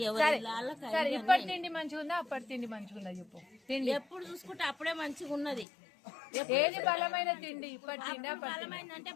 ఎవరి ఇప్పటి తిండి మంచిగా ఉందా అప్పటి తిండి మంచిగా ఉందా చెప్పు. ఎప్పుడు చూసుకుంటే అప్పుడే మంచిగా ఉన్నది. ఏది బలమైన తిండి? ఇప్పటి తిండి బలమైంది అంటే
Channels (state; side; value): drops out; right; at 5.7 s